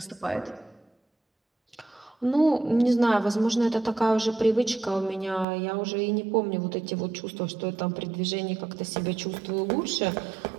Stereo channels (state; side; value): drops out; left; at 5.5 s